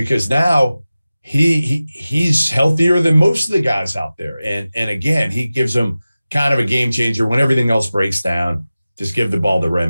now he's healthier than most of the guys out there. And again, he gives them kind of a game changer when everything else breaks down. Just give the ball to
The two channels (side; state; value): both; inverted; correlation -0.96